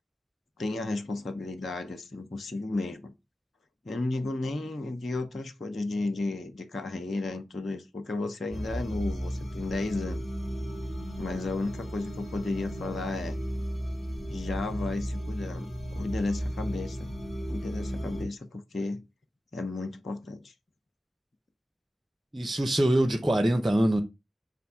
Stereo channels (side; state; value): both; normal; correlation 0.93